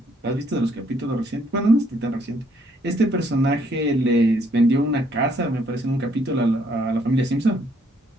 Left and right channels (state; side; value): normal; both; correlation 0.68